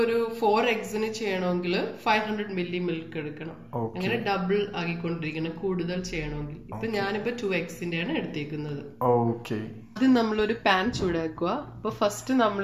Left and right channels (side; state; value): both; identical; correlation 1.00